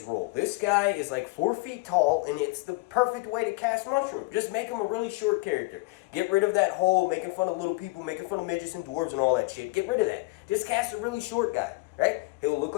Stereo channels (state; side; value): quieter; right; 23.9 dB